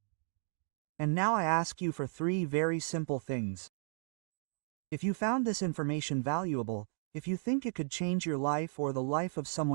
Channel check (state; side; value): silent; left; digital silence